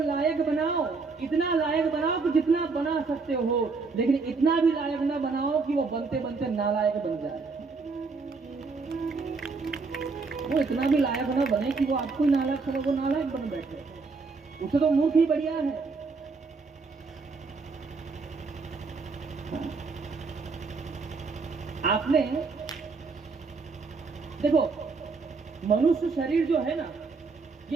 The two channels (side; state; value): left; quieter; 4.3 dB